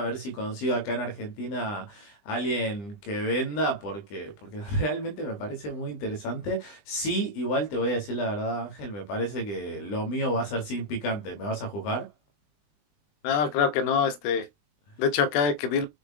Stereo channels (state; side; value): late; right; 20 ms